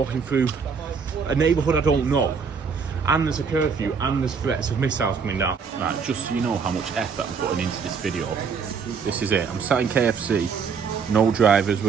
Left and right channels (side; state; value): left; quieter; 5.8 dB